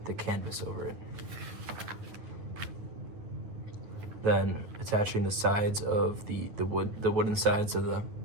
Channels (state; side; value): late; left; 9.2 ms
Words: the canvas over it. Then attaching the sides of the wooden sides of